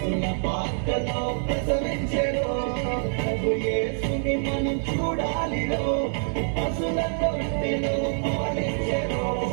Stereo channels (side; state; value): left; silent; digital silence